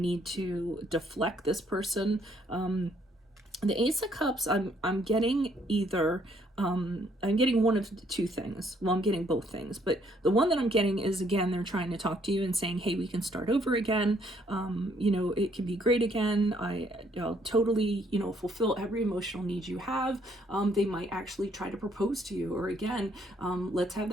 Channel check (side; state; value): both; normal; correlation 0.67